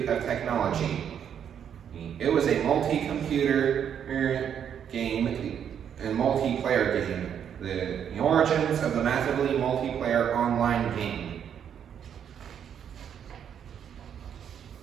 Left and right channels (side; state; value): left; quieter; 8.6 dB